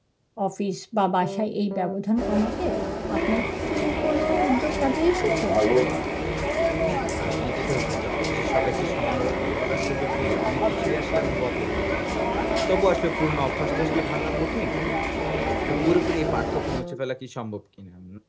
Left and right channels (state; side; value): identical; both; correlation 1.00